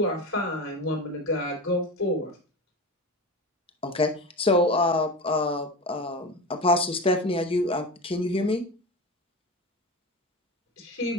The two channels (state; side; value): normal; both; correlation 0.26